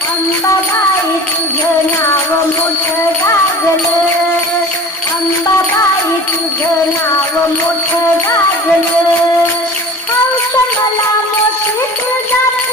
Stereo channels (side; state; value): both; normal; correlation 0.40